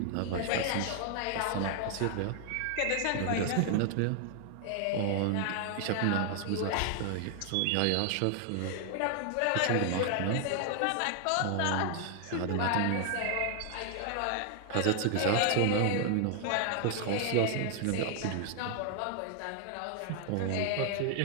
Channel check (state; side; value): different; both; correlation 0.00